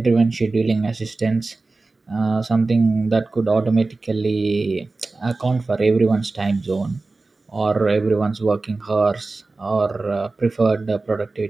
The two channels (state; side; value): quieter; left; 3.5 dB